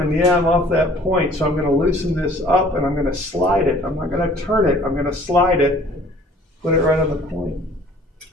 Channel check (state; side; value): normal; both; correlation 0.53